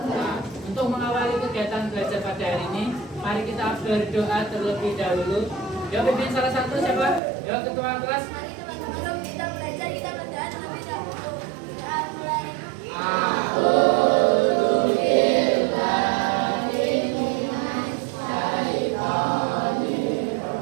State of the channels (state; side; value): drops out; left; at 7.2 s